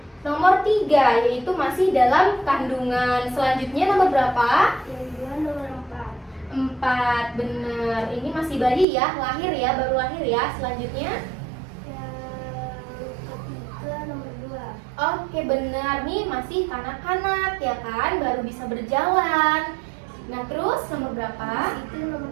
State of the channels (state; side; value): drops out; left; at 8.8 s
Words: nomor 3, yaitu masih dalam kandungan. Selanjutnya nomor berapa? Yang kedua nomor 4. 4, benar. Ini masih bayi ya, baru lahir ya. Selanjutnya Yang ketiga nomor 2. oke, benar. Nih masih kanak-kanak ya kan, baru bisa berjalan. Nah, terus nomor berapa? Itu nomor